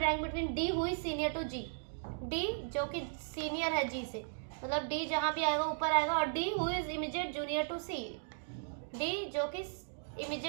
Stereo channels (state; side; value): silent; left; digital silence